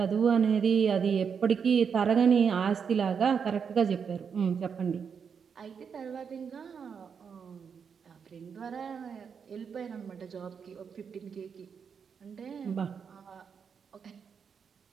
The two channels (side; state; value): left; quieter; 6.6 dB